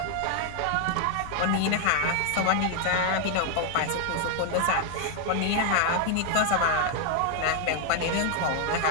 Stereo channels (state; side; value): different; both; correlation 0.00